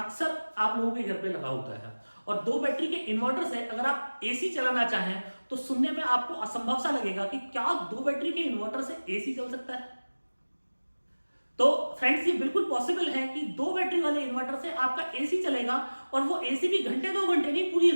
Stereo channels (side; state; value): both; inverted; correlation -1.00